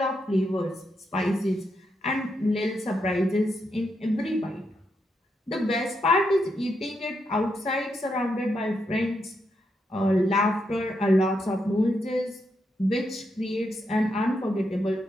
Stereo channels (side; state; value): both; normal; correlation 0.81